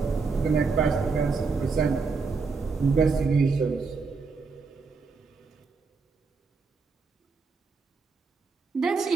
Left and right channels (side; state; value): left; quieter; 4.6 dB